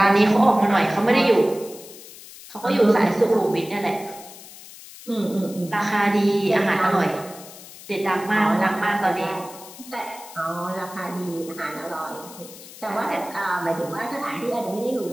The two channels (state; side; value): noise; left; hiss, 17 dB below the sound